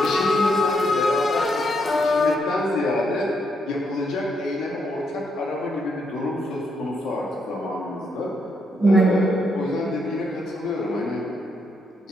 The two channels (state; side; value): normal; both; correlation 0.77